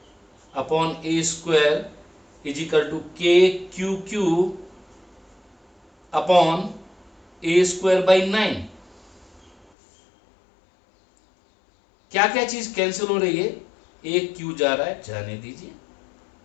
upon a² is equal to KQQ upon a²/9। क्या क्या चीज कैंसिल हो रही है, एक Q जा रहा है, जाने दीजिए,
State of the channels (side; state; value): right; drops out; at 9.7 s